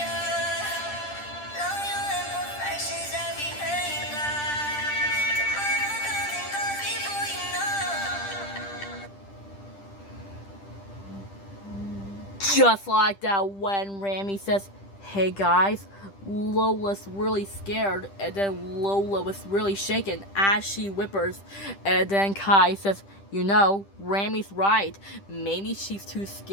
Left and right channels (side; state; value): right; late; 10 ms